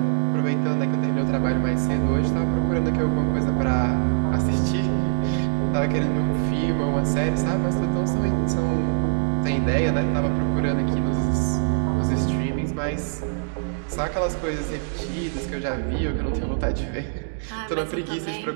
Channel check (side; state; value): left; silent; digital silence